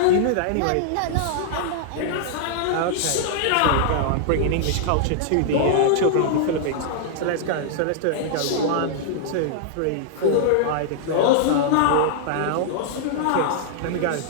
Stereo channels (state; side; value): different; both; correlation -0.01